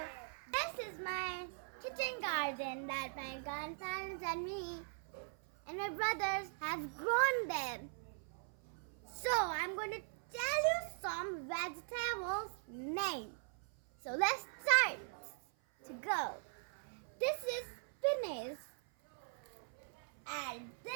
this is my kitchen garden that my grandparents and me and my brothers have grown them. So I'm going to tell you some vegetables name. So let's start to go. This is spinach and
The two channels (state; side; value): silent; left; 51 dB below the other